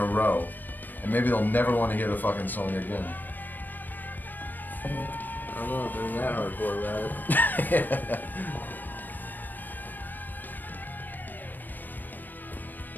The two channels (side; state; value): right; late; 0.090 ms